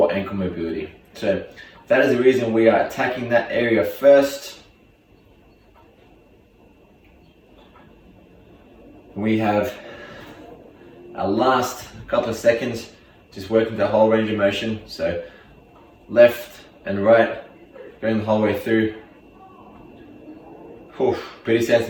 ankle mobility. So that is the reason we are attacking that area first. We have our last couple of seconds, just working the whole range of motion. So left and right, going the whole way through. Whew, pretty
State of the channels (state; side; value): identical; both; correlation 1.00